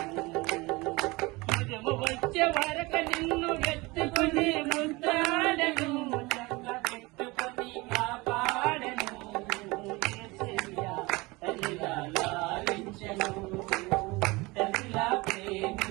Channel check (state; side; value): quieter; left; 23.4 dB